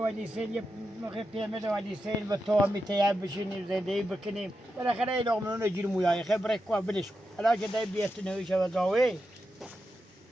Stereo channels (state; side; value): normal; both; correlation 0.88